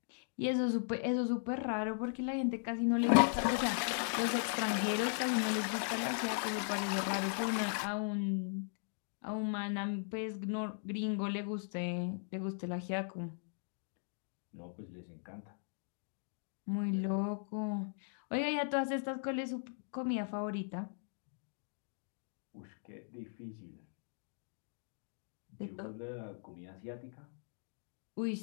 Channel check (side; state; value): right; silent; digital silence